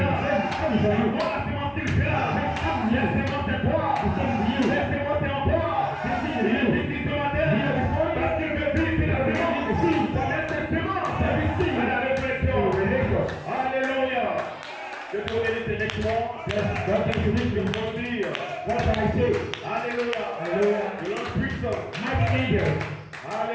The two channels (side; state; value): both; identical; correlation 1.00